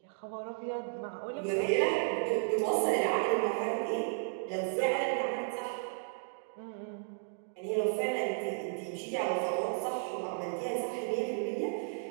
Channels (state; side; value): silent; left; digital silence